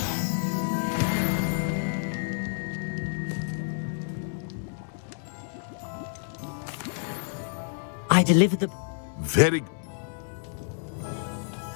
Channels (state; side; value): silent; right; digital silence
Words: I delivered the... Very...